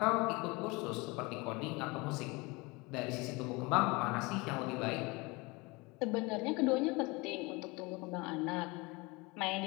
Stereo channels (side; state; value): right; quieter; 25.5 dB